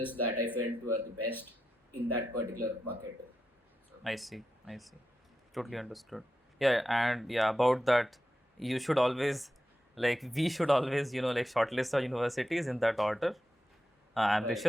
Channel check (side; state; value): both; normal; correlation 0.89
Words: that I felt were the best in that particular bucket. So. I see. I see. Totally understood. Yeah, and yeah, about that, you should always, like, we should always, like, shortlist our universities in that order: Right.